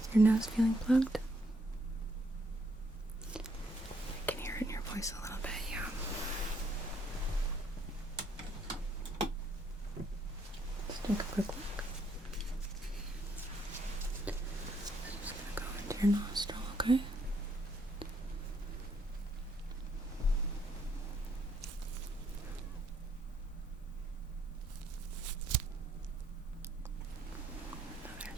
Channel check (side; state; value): both; normal; correlation 0.71